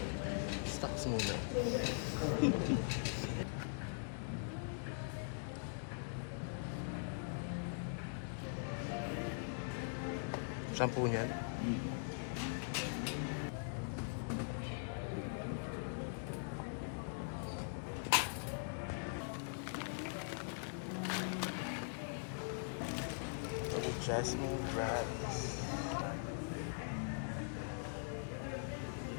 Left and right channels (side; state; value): right; silent; digital silence